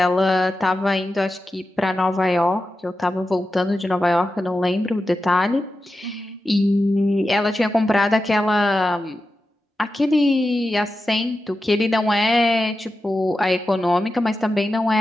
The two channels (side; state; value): both; normal; correlation 0.91